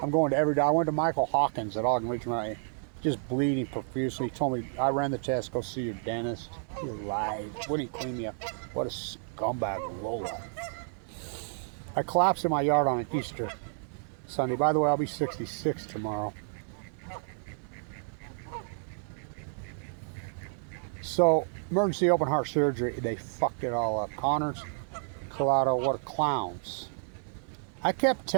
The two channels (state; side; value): silent; left; digital silence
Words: I'm going to every day. I went to Michael Hawkins at Ogden Regional, just bleeding profusely. He told me, I ran the test, go see your dentist. He lied. Wouldn't clean me up. What a scumbag lowlife. I collapsed in my yard on an Easter Sunday. By the way, I'll be 66 tomorrow. So, emergency open heart surgery, they fucked it all up. Connors, Collado, what clowns. I kept